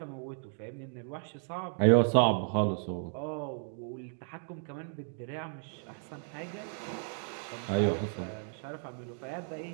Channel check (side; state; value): left; silent; 55 dB below the other